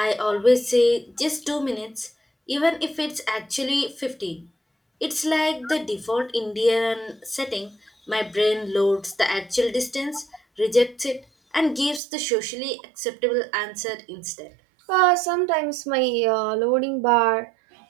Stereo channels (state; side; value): drops out; left; at 12.0 s